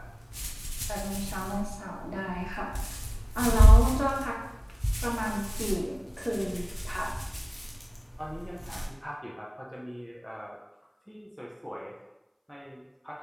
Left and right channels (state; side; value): identical; both; correlation 1.00